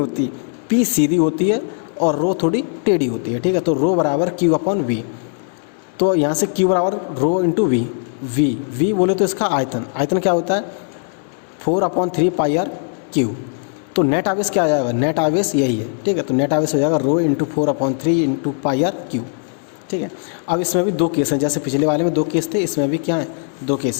पी सीधी होती है और रो थोड़ी टेढ़ी होती है। ठीक है, तो रो बराबर क्यू अपॉन वी। तो यहाँ से क्यू बराबर रो इंटू वी। वी बोले तो इसका आयतन क्या होता है, 4/3 पाई आर क्यू। तो नेट आवेश क्या आ जाएगा, नेट आवेश यही है। ठीक है, तो नेट आवेश हो जाएगा rho into 4/3 into pi R cube. ठीक है, अब इसमें भी दो केस हैं, जैसे पिछले वाले में दो केस थे, इसमें भी क्या है, दो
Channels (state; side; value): silent; right; 57 dB below the other